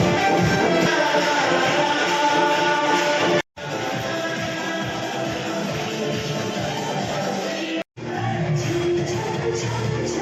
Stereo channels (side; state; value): both; identical; correlation 1.00